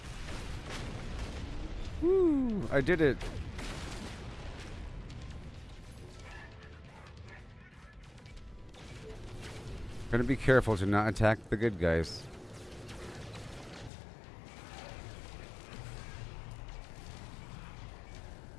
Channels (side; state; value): right; drops out; at 13.9 s